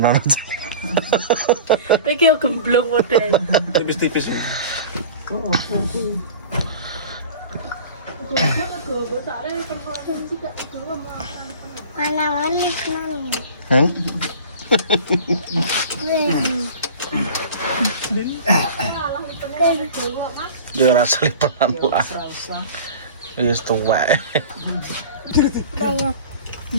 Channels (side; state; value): both; inverted; correlation -0.39